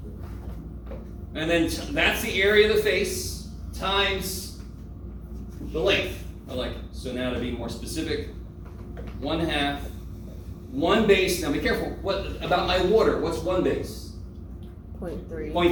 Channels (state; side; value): identical; both; correlation 1.00